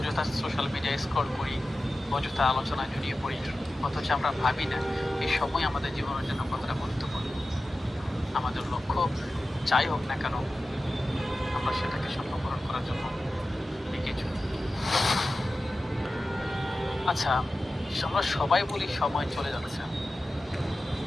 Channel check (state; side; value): normal; both; correlation 0.94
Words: সোশ্যাল মিডিয়ায় স্ক্রল করি, অযথা আলোচনায় জড়িয়ে পড়ি, অথচ আমরা ভাবি না এই সময় আমাদের জীবনের জন্য কতটা গুরুত্বপূর্ণ। আমাদের লক্ষ্য যাই হোক না কেন আমরা সেটাকে সফলকরণ করার জন্য এগিয়ে চলি। আচ্ছা, আমরা সবাই বলি সময় চলে যাচ্ছে,